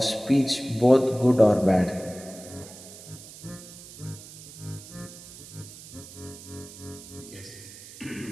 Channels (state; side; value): noise; right; hiss, 16 dB below the sound